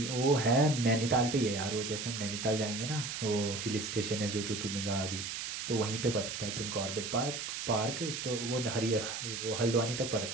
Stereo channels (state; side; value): noise; right; hiss, 5 dB below the sound